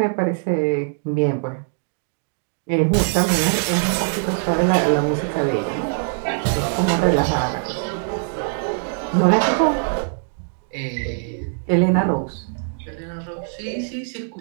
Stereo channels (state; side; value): silent; left; digital silence